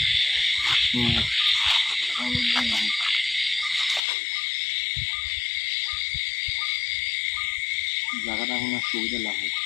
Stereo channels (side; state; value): right; drops out; at 4.0 s